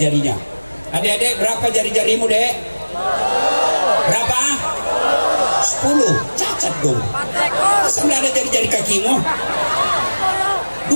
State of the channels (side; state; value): both; inverted; correlation -1.00